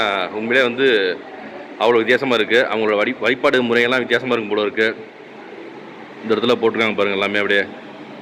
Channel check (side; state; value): both; identical; correlation 1.00